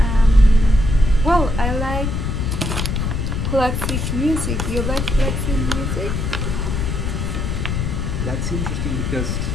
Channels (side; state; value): left; noise; rumble, 1 dB below the sound